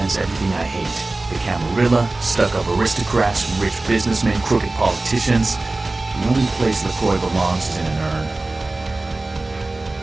everything I hate. The Camarilla, stuck-up aristocrats, rich businessmen, crooked politicians. The only place LaCroix belongs is in an urn.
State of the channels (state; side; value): quieter; left; 3.1 dB